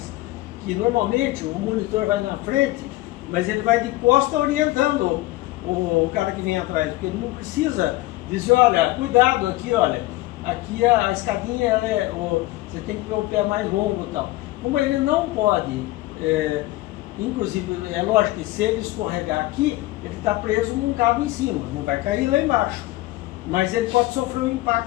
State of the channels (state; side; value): quieter; right; 18.5 dB